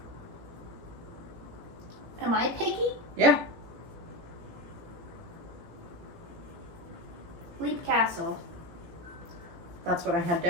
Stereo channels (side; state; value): left; late; 17 ms